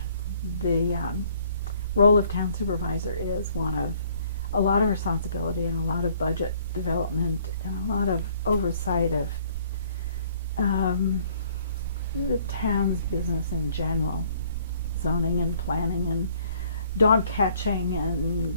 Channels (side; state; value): both; inverted; correlation -0.60